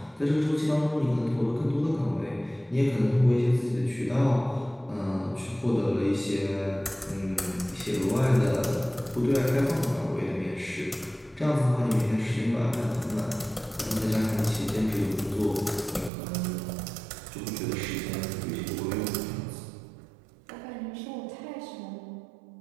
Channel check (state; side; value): drops out; left; at 16.1 s